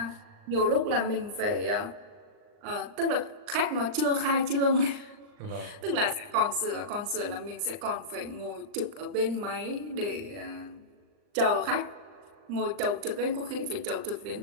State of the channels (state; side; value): late; left; 39 ms